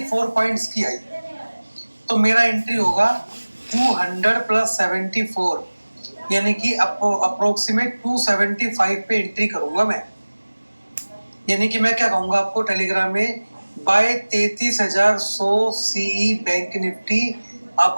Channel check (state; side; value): inverted; both; correlation -1.00